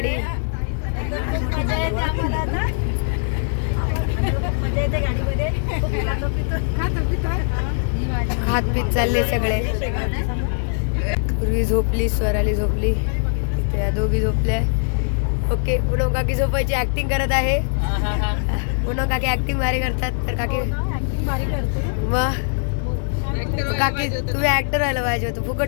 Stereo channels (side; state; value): right; silent; digital silence